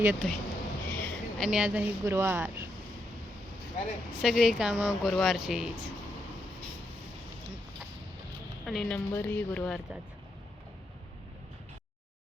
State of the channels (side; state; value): both; normal; correlation 0.80